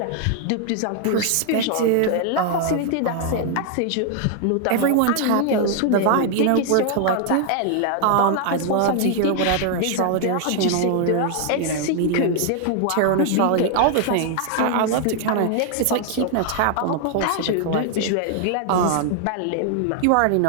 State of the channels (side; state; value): both; different; correlation 0.00